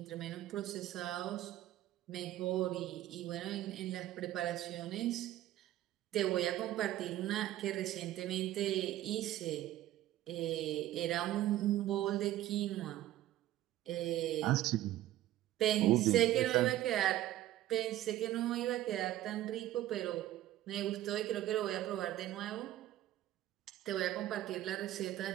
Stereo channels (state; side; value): quieter; left; 14.0 dB